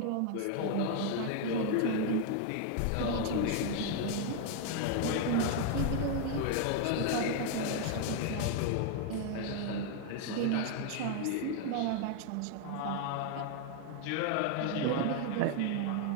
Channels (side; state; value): both; different; correlation 0.01